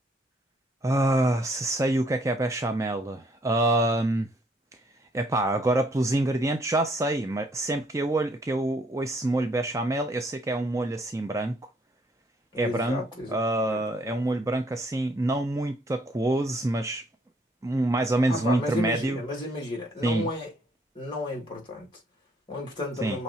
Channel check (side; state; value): both; normal; correlation 0.66